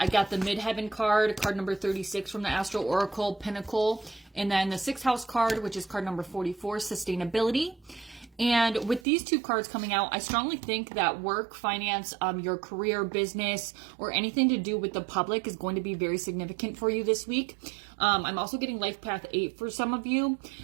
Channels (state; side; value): drops out; left; at 9.1 s